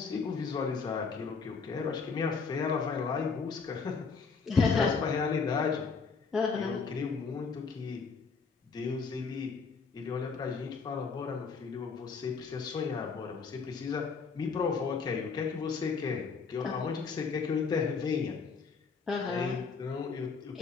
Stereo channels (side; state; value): right; quieter; 5.1 dB